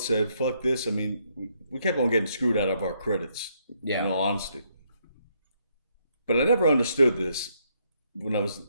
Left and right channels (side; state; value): both; inverted; correlation -0.73